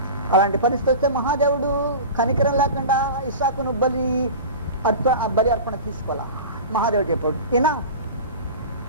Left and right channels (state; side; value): inverted; both; correlation -0.33